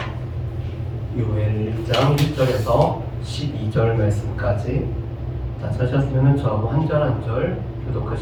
요엘 1장 1절에서 12절 말씀까지. 다 찾으셨으면 저하고 한 절 한 절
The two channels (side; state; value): both; identical; correlation 1.00